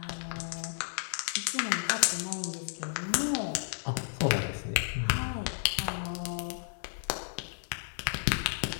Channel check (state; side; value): silent; right; digital silence